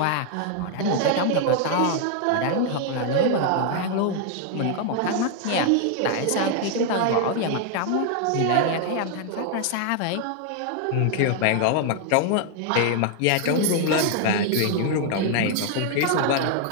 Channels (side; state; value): both; different; correlation 0.00